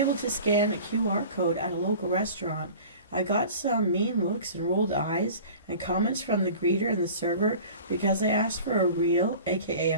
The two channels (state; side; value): inverted; both; correlation -0.41